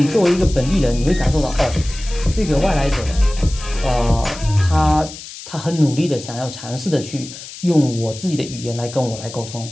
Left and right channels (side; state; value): left; noise; hiss, 14 dB below the sound